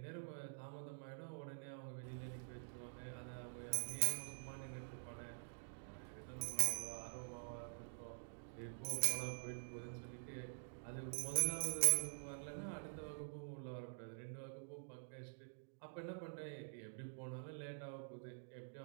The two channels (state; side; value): silent; left; digital silence